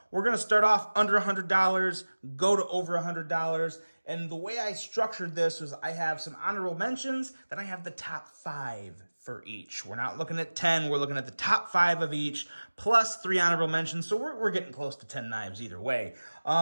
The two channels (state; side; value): inverted; both; correlation -1.00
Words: We're going to start off under $100, go to over $100. And the way I structured this was I have some honorable mentions, then I have the top 5 for each. We're not looking at 10, we're looking at the top 5 of each, plus 3 honorable mentions, so we're getting close to 10 knives either way.